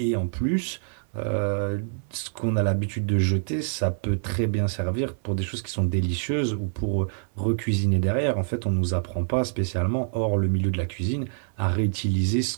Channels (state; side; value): silent; left; digital silence